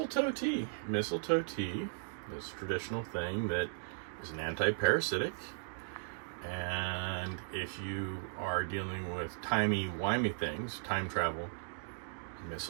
tea? Mistletoe tea is a traditional thing that is an anti-parasitic. And if you are dealing with timey-wimey things, time travel,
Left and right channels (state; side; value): silent; left; digital silence